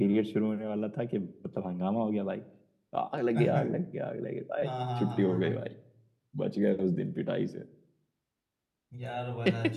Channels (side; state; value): both; identical; correlation 1.00